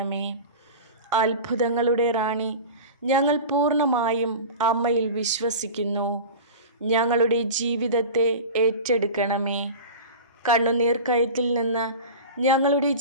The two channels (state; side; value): inverted; both; correlation -0.32